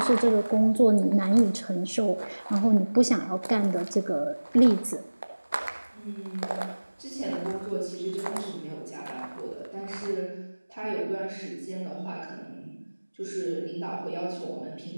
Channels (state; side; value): inverted; both; correlation -1.00